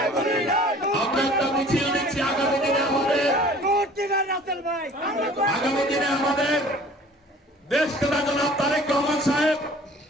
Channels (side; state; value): both; normal; correlation 0.49